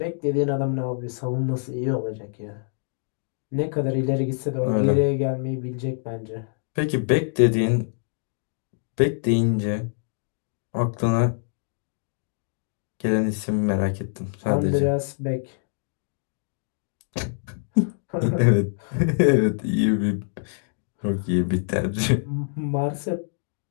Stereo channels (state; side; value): silent; right; digital silence